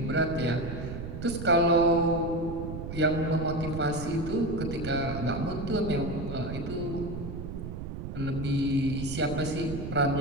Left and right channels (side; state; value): right; noise; rumble, 7 dB below the sound